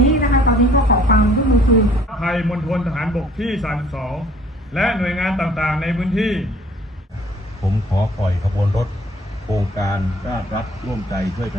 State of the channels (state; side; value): normal; both; correlation 0.56